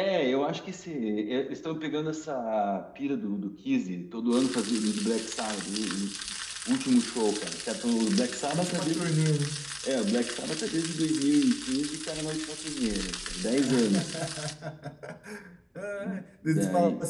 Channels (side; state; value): both; identical; correlation 1.00